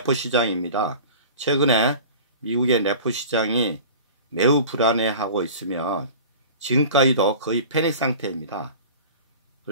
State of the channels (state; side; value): inverted; both; correlation -0.39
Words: 시장입니다. 최근에 미국의 레포 시장이 매우 불안해하고 있으며 지금까지도 거의 패닉 상태입니다.